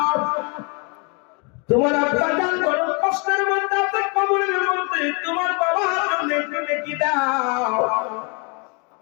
তোমার আব্বা জান বড় কষ্টের মধ্যে আছে, কবরের মধ্যে। তোমার বাবার জন্য একটু নেকি দাও,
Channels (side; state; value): right; quieter; 33.2 dB